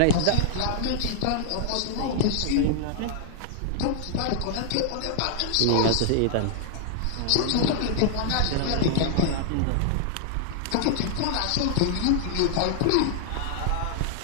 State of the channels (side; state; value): both; different; correlation -0.01